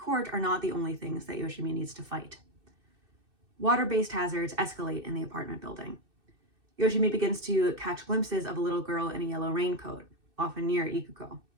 are not the only things that Yoshimi needs to fight. Water-based hazards escalate in the apartment building. Yoshimi begins to catch glimpses of a little girl in a yellow raincoat, often near Ikuko.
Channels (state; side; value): late; left; 2.6 ms